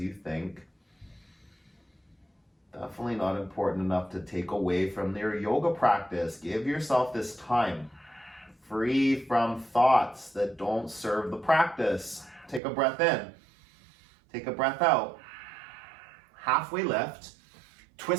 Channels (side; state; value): left; drops out; at 12.6 s